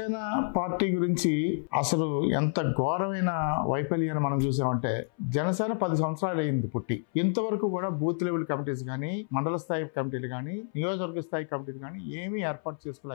party గురించి అసలు ఎంత ఘోరమైన వైఫల్యాన్ని మనం చూసామంటే, జనసేన 10 సంవత్సరాలు అయింది పుట్టి. ఇంతవరకు కూడా బూత్ లెవెల్ కమిటీస్ కానీ, మండల స్థాయి కమిటీలు కానీ, నియోజకవర్గ స్థాయి కమిటీలు కానీ ఏమీ ఏర్పాటు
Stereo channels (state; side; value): silent; right; 58 dB below the other